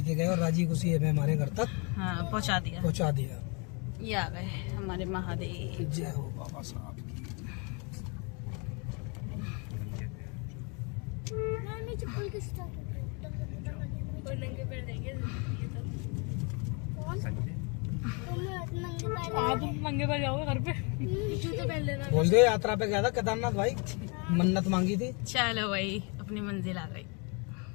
गए और राजी खुशी हमें हमारे घर तक हाँ पहुंचा दिया। पहुँचा दिया। ये आ गए हमारे महादेव। जय हो बाबा साहब की। चप्पल किस तरह नंगे पैर देंगे कौन संजय तुम नंगे पैर आप नंगे पैर जाओगे घर पे, जूते पहन लेना। बोल दो यात्रा पे गया था केदारनाथ भाई, मन्नत मांगी थी। चलो भाई अपनी मंजिल आ गई,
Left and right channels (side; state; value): right; quieter; 33.0 dB